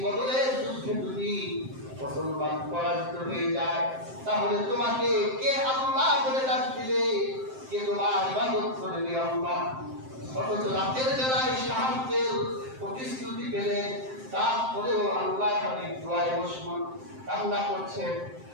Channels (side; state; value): left; late; 7.6 ms